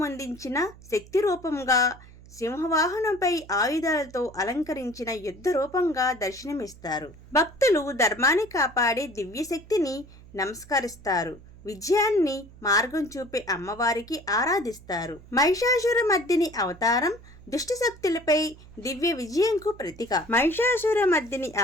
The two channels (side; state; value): right; noise; hum, 21 dB below the sound